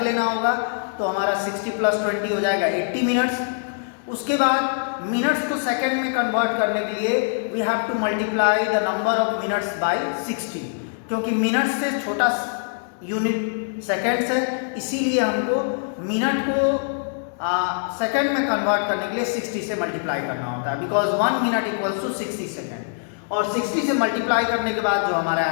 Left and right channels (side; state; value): right; silent; digital silence